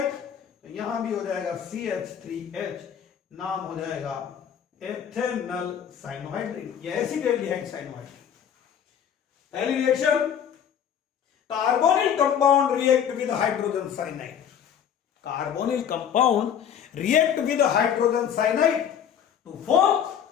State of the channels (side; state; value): right; quieter; 8.6 dB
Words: तो यहां भी हो जाएगा CH3H, नाम हो जाएगा एथेनल साइनोहाइड्रिन या एसिडल्डिहाइड साइनोहाइड्रिन। पहली reaction, carbonyl compound react with hydrogen cyanide, carbonyl compound react with hydrogen cyanide to form